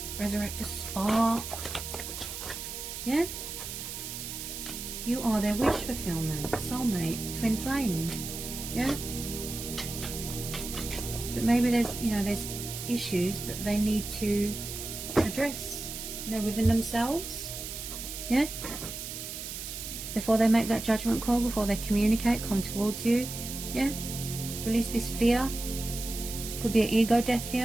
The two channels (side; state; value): right; noise; hiss, 7 dB below the sound